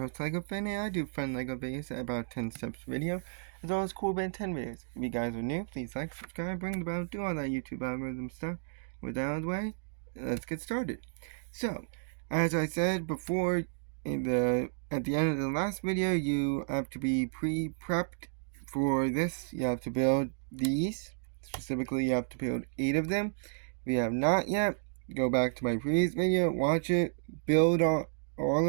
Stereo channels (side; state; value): left; silent; digital silence